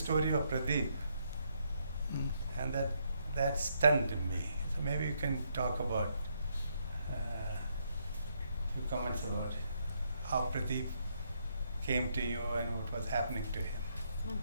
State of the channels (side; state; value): both; inverted; correlation -0.75